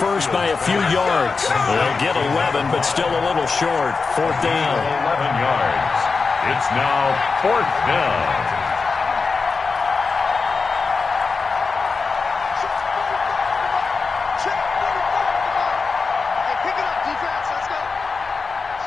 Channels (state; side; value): quieter; right; 4.6 dB